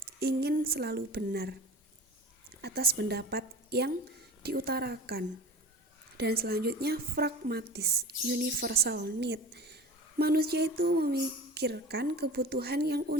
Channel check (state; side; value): normal; both; correlation 0.36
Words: ingin selalu benar atas pendapat yang diutarakan. Dan selanjutnya, pragmatis, universal need. Manusia itu memikirkan kebutuhan yang